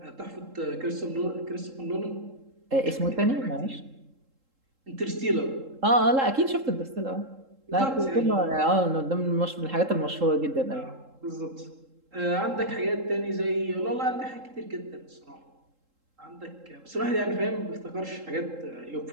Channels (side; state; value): left; late; 3.7 ms